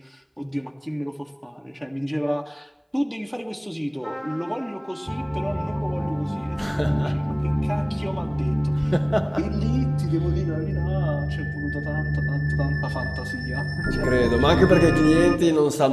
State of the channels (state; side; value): identical; both; correlation 1.00